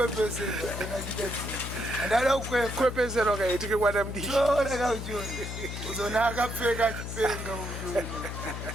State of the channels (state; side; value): noise; left; hum, 6 dB below the sound